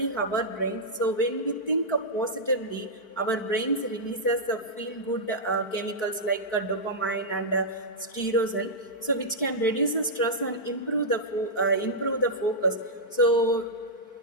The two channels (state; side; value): late; right; 4.5 ms